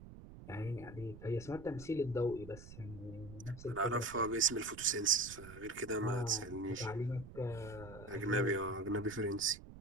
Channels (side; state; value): right; noise; rumble, 15 dB below the sound